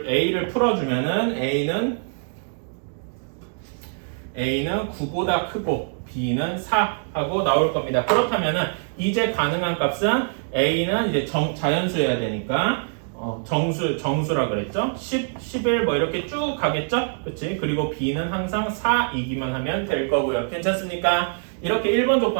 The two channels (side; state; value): left; silent; digital silence